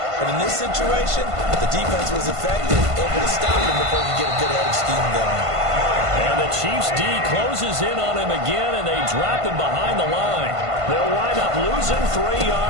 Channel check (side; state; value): left; late; 1.5 ms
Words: But in this situation, the defense was effective, able to stop him before he could get a good head of steam going. And the Chiefs D closes in on him again, and they drop him behind the line. They'll wind up losing 3